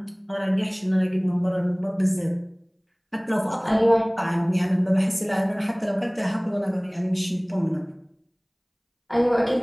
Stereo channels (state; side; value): identical; both; correlation 1.00